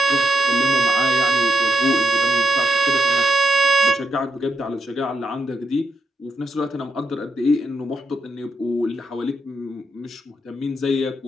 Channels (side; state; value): both; normal; correlation 0.80